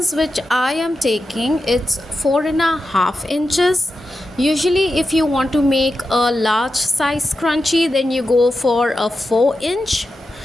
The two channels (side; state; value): both; normal; correlation 0.89